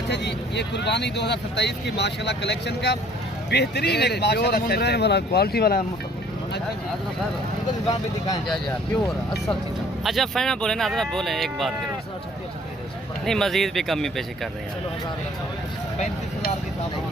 जी ये कुर्बानी 2027 की माशाल्लाह कलेक्शन का बेहतरीन एक माशाल्लाह वाला क्वालिटी वाला। दुकान पे दिखाएं प्योर असल चीज़। अच्छा फाइनल बोले ना, अदरा बोले एक बात करें नहीं, मजीद भी कमी पेशी कर रहे हैं। 35,000 के हिसाब से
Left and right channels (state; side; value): normal; both; correlation 0.56